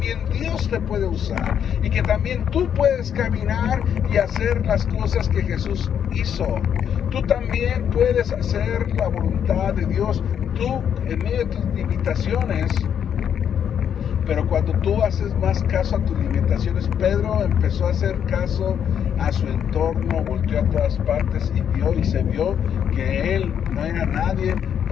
Dios te puede usar, y que también tú puedes caminar y hacer las cosas que Jesús hizo. Tú también puedes hacer la voluntad de Dios, tú en medio de tus limitaciones. Pero cuando tú haces más caso a tus limitaciones, Pedro empezó a hacer caso a su entorno, volteó a todas partes y se vio que él no era nadie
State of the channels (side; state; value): right; quieter; 8.6 dB